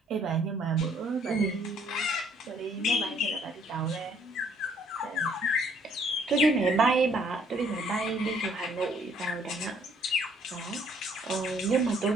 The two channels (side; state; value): both; normal; correlation 0.63